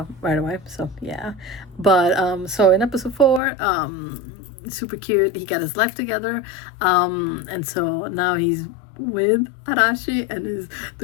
away. So yeah, but so in episode 4, super cute. He got his life together, and so now he's with Arashi, and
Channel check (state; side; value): drops out; right; at 3.4 s